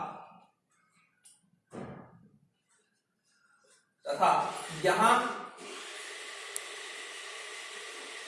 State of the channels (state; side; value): identical; both; correlation 1.00